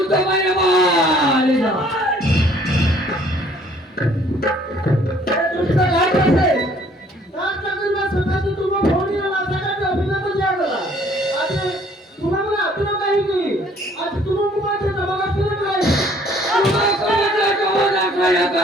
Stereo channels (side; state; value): both; normal; correlation 0.59